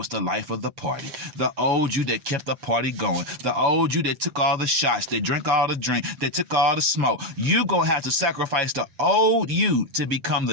the life of the party. The old you that kept the party going. The old you that took all the shots, that drank all the drink, that took all the smoke. You're going to have to sacrifice the old you to become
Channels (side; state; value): left; late; 7.1 ms